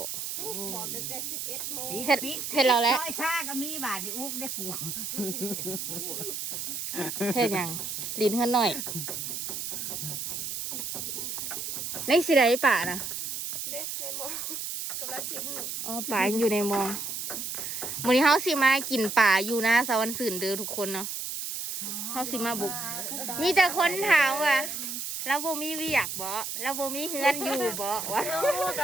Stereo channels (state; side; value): noise; right; hiss, 5 dB below the sound